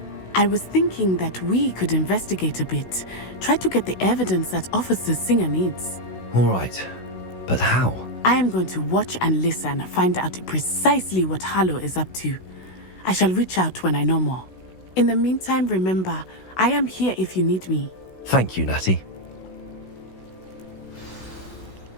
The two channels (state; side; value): late; right; 16 ms